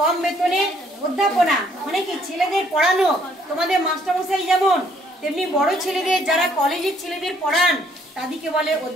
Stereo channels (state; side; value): normal; both; correlation 0.65